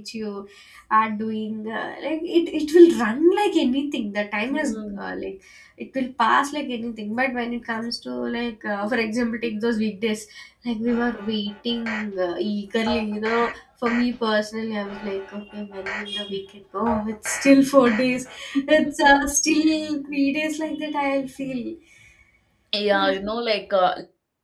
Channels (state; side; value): identical; both; correlation 1.00